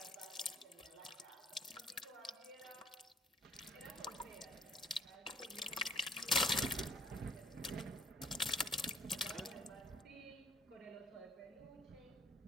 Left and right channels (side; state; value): both; normal; correlation 0.62